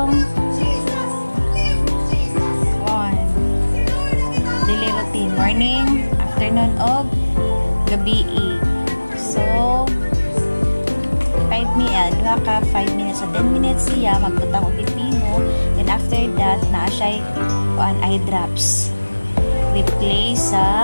daily routine. Morning, afternoon, o gabi. So, 5 minutes. So, 10 minutes siya. Magbutang o pipino. Then, after that, na-asya eye drops. Replace sa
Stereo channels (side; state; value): both; inverted; correlation -1.00